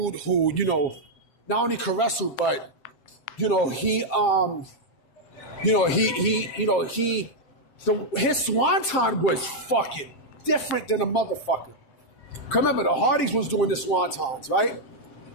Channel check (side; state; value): right; late; 7.5 ms